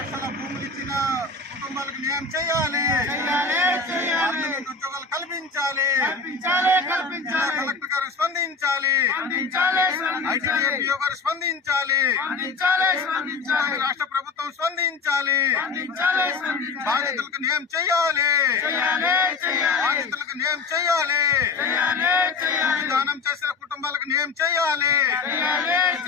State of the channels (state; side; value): quieter; right; 4.4 dB